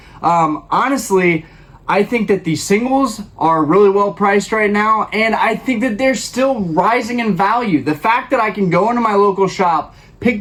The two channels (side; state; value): both; identical; correlation 1.00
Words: Honestly, I think that the singles are really well priced right now, and I think that they're still rising in value. The fact that I can go into my local shop,